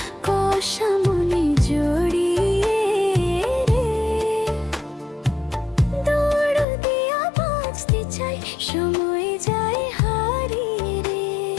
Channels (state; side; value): drops out; right; at 6.7 s